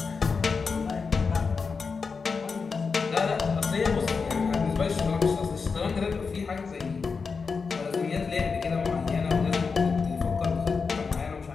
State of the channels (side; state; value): right; quieter; 5.0 dB